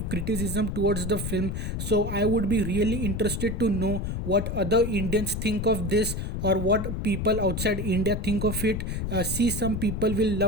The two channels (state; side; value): noise; left; rumble, 3 dB below the sound